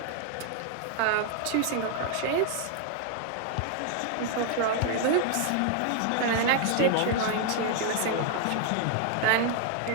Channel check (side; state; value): both; different; correlation 0.00